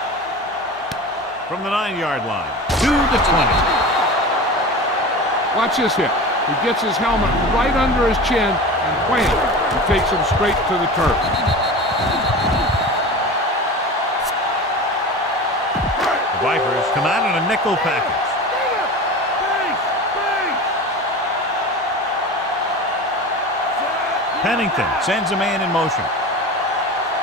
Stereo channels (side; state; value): both; normal; correlation 0.32